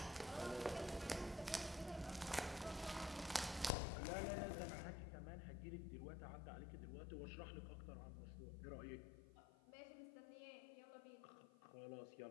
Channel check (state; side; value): drops out; right; at 3.7 s